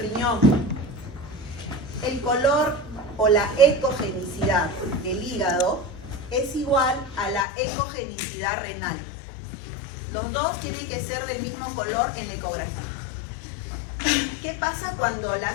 El color o la ecogenicidad del hígado es igual a la ecogenicidad renal. Los dos tienen que ser del mismo color en la ecografía. ¿Qué pasa cuando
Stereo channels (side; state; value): right; drops out; at 7.5 s